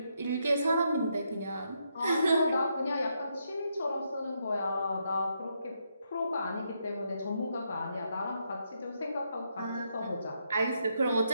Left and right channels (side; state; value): both; inverted; correlation -0.78